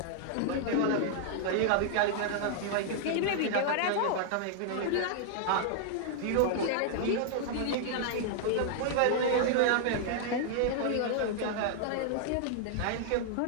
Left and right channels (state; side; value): different; both; correlation -0.01